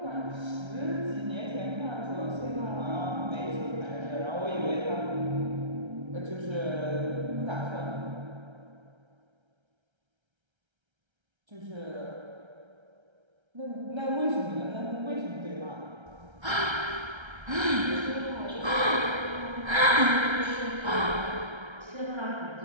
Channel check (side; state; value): left; late; 1.3 ms